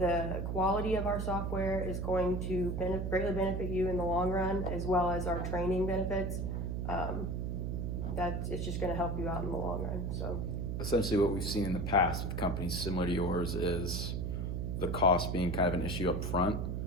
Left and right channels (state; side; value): noise; right; hum, 2 dB below the sound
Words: quality of our software is going to greatly benefit you in the long run, as well as our training benefits. It's just going to help you out in the long run. So. Essentially what we've seen in the past with companies similar to yours is the cost being kind of an issue up front,